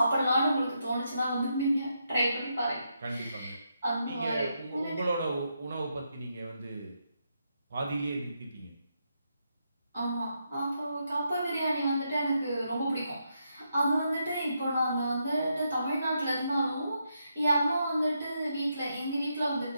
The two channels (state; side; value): inverted; both; correlation -0.81